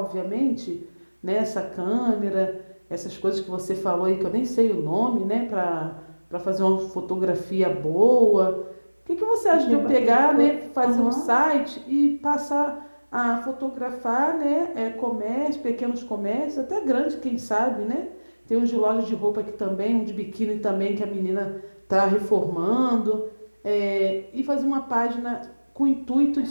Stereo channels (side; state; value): both; inverted; correlation -1.00